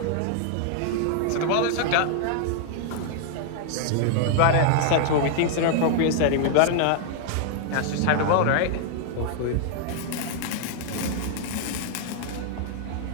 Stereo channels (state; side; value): different; both; correlation 0.00